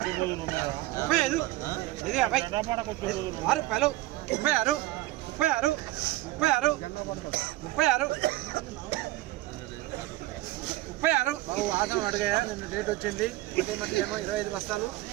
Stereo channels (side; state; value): left; quieter; 17.7 dB